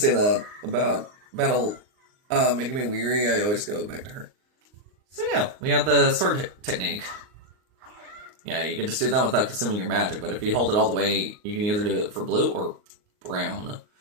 that about battle making me weary. I always go back to her. So yeah, we have the sword technique. Yeah, you can just do that without consuming your magic, but if you hold it all the way, you can either do it for blue or brown.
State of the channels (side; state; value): left; late; 39 ms